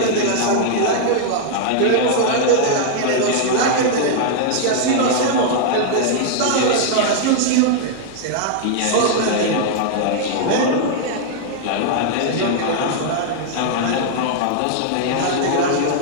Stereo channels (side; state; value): both; different; correlation -0.01